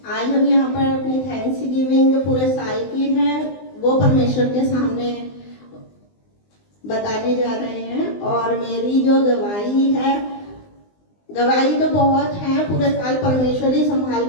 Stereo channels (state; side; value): late; right; 20 ms